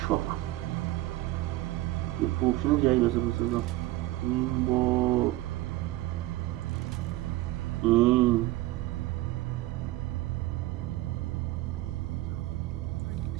یه پوکشن جایی بسه بسازم. این با این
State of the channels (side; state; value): left; quieter; 17.5 dB